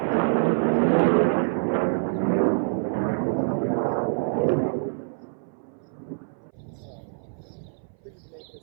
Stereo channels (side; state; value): left; silent; 59 dB below the other